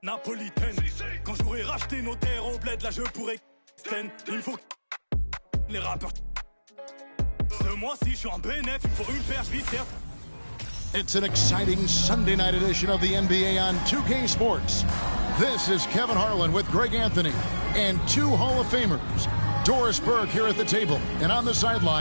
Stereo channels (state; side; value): inverted; both; correlation -1.00